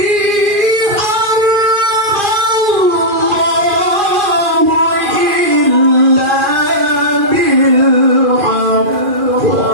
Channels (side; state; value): left; late; 2.4 ms